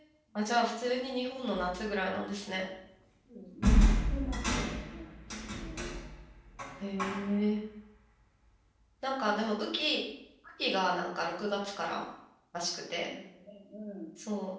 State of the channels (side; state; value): both; identical; correlation 1.00